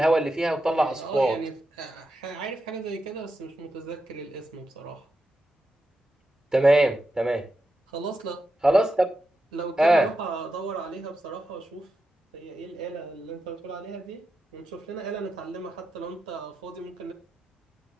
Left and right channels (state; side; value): normal; both; correlation 0.88